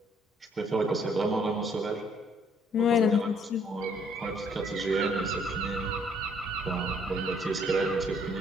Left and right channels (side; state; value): both; normal; correlation 0.64